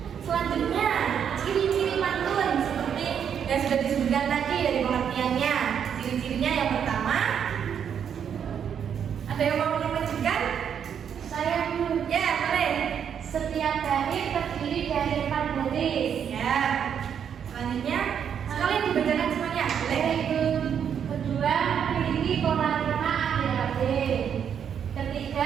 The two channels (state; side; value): quieter; left; 8.1 dB